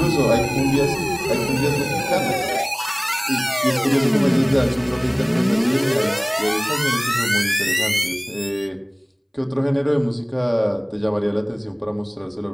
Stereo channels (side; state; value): both; identical; correlation 1.00